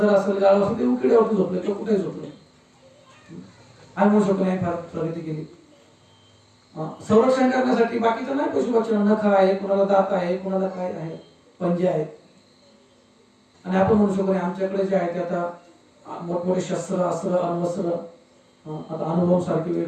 असेल, गाढव असेल, ते उकिड्यावरती झोपले किंवा कुठेही झोपले. आणि म्हणू शकतो नाही फार प्रगती केली. संरक्षण करण्यासाठी बाकीचं नाही, पशु पक्ष्यांना नख आहे, कुणाला दात आहे, कुणाला काय आहे, पंजे आहेत. आणि आपण म्हणू शकतो आमच्याकडे जे आहे ते आता मोठमोठे शस्त्र, अस्त्र, अण्वस्त्र, आता अणुबॉम्ब सारखे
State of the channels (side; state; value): both; identical; correlation 1.00